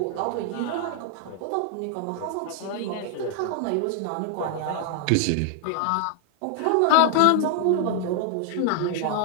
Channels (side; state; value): both; different; correlation 0.00